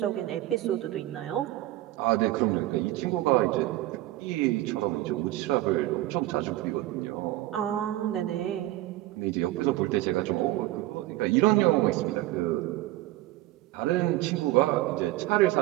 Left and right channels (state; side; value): quieter; left; 16.3 dB